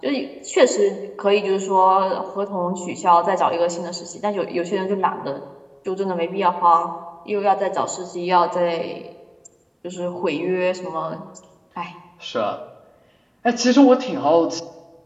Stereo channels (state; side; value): identical; both; correlation 1.00